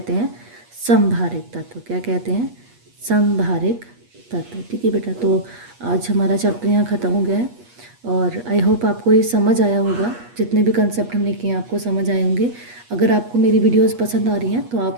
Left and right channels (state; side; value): late; left; 8.3 ms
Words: हैं समभारिक तत्व। क्या कहते हैं, समभारिक तत्व। ठीक है बेटा, तो आज हमारा चैप्टर यहाँ ख़त्म हो गया है, और आई होप आपको ये समझ आया होगा, जितने भी कंसेप्ट हमने किए आपको समझ आए होंगे। अगर आपको मेरी वीडियोस पसंद आ रही हैं तो